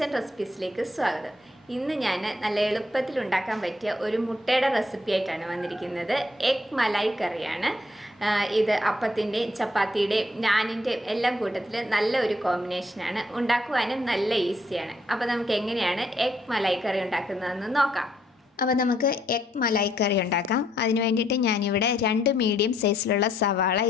റെസിപ്പീസിലേക്ക് സ്വാഗതം. ഇന്ന് ഞാൻ നല്ല എളുപ്പത്തിൽ ഉണ്ടാക്കാൻ പറ്റിയ ഒരു മുട്ടയുടെ റെസിപ്പി ആയിട്ടാണ് വന്നിരിക്കുന്നത്. എഗ് മലായി കറിയാണ് ഇത്. അപ്പത്തിൻ്റെയും ചപ്പാത്തിയുടെയും നാനിൻ്റെയും എല്ലാം കൂട്ടത്തിൽ നല്ല ഒരു കോമ്പിനേഷനാണ്. ഉണ്ടാക്കുവാനും നല്ല ഈസിയാണ്. അപ്പോൾ നമുക്ക് എങ്ങനെയാണ് എഗ് മലായി കറി ഉണ്ടാക്കുന്നതെന്ന് നോക്കാം. അപ്പോൾ നമുക്ക് എഗ് മലായി കറി ഉണ്ടാക്കാം. അതിന് വേണ്ടിയിട്ട് ഞാനിവിടെ 2 മീഡിയം സൈസിലുള്ള സവാള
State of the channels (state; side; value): normal; both; correlation 0.71